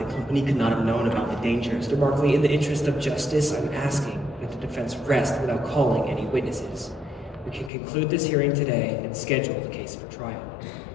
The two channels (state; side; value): drops out; right; at 7.7 s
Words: company could not have known about the danger. Mr. Markley, in the interest of justice, I'm asking that the defense rest without calling any witnesses. We can conclude this hearing today and schedule the case for trial.